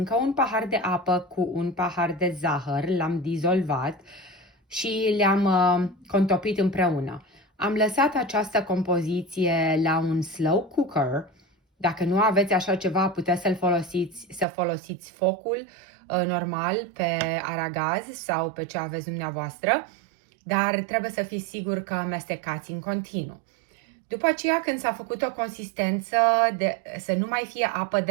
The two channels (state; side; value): drops out; left; at 14.5 s